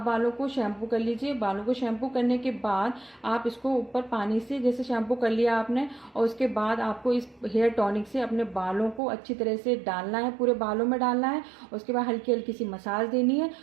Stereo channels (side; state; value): left; drops out; at 9.0 s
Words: बालों को शैम्पू कर लीजिए। बालों को शैम्पू करने के बाद आप इसको ऊपर पानी से जैसे शैम्पू कर लिया आपने, और उसके बाद आपको इस हेयर टॉनिक से अपने बालों को अच्छी तरह से डालना है, पूरे बालों में डालना है। उसके बाद हल्की हल्की सी मसाज देनी है